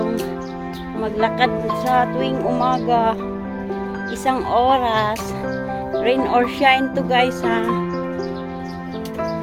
Maglakad sa tuwing umaga. 1 oras. Rain or shine to guys ha.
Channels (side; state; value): both; identical; correlation 1.00